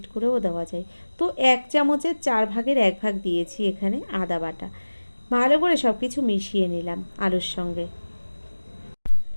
করেও দেওয়া যায়। তো 1 চামচের 4 ভাগের 1 ভাগ দিয়েছি এখানে আদা বাটা। ভালো করে সব কিছু মিশিয়ে নিলাম আলুর সঙ্গে।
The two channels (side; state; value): both; inverted; correlation -1.00